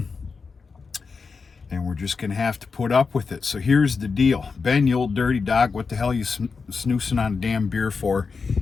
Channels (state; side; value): quieter; right; 4.9 dB